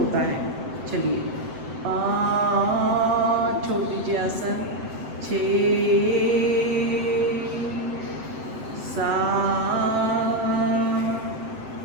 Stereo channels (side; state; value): left; late; 7.9 ms